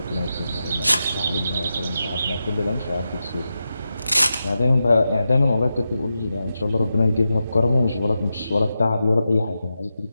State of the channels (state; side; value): inverted; both; correlation -0.89